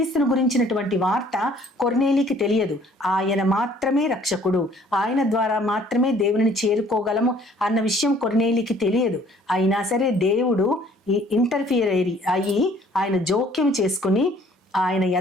గురించినటువంటి వార్త కొర్నేలికి తెలియదు. ఆయన మాత్రమే రక్షకుడు, ఆయన ద్వారా మాత్రమే దేవుని చేరుకోగలము అన్న విషయం కొర్నేలికి తెలియదు. అయినా సరే దేవుడు ఇంటర్ఫియర్ అయ్యి ఆయన జోక్యం చేసుకుని ఆయన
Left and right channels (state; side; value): normal; both; correlation 0.57